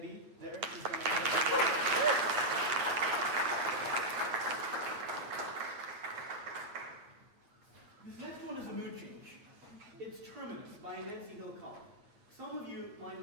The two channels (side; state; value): left; late; 8.5 ms